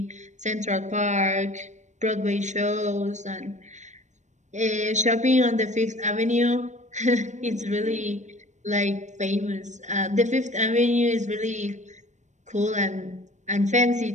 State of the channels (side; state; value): left; late; 0.34 ms